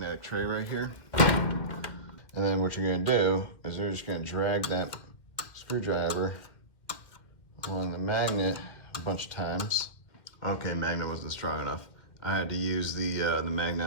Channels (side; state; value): right; late; 1.9 ms